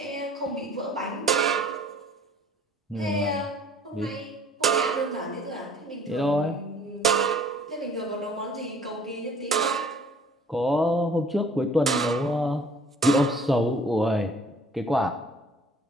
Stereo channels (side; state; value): both; normal; correlation 0.54